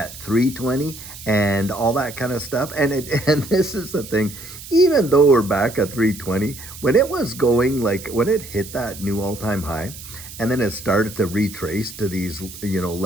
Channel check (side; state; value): right; noise; hiss, 14 dB below the sound